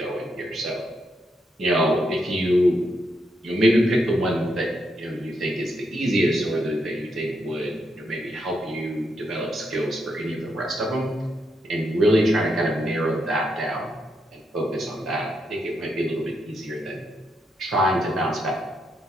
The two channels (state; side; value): normal; both; correlation 0.80